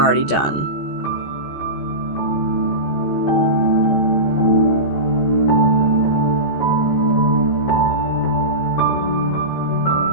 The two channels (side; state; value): right; late; 14 ms